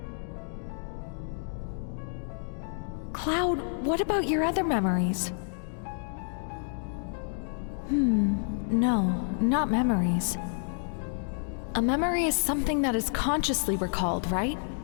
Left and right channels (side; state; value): right; silent; digital silence